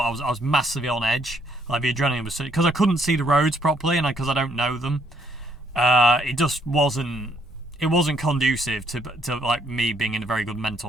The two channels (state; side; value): normal; both; correlation 0.69